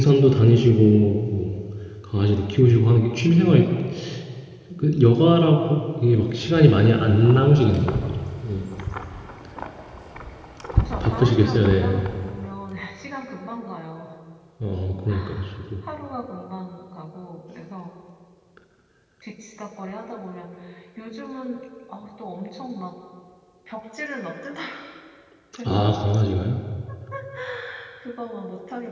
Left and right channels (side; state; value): both; identical; correlation 1.00